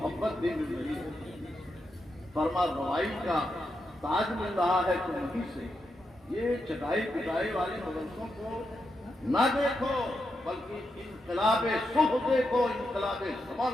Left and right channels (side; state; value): both; normal; correlation 0.85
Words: بھی مل رہی ہے، فرما روائی کا تاج مل رہا ہے تو وہیں سے۔ یہ چٹائی پٹائی والے مدرسوں کو نہ دیکھو، بلکہ انقلاب صبح دیکھو، انقلاب